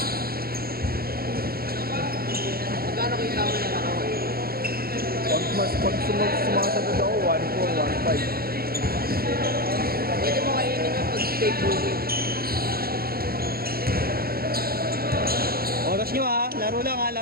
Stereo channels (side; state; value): left; late; 0.44 ms